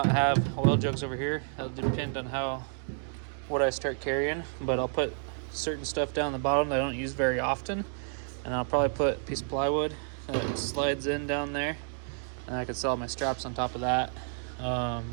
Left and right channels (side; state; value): left; silent; 58 dB below the other